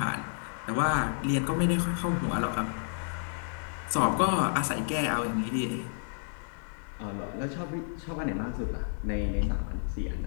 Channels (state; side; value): silent; right; digital silence